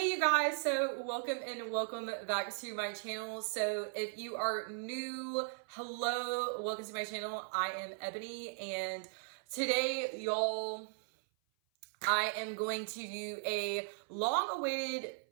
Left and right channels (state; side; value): silent; left; 53 dB below the other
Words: you guys, so welcome back to my channel. So if you are new, hello, welcome to my channel. I am Ebony, and today y'all, I am going to do a long-awaited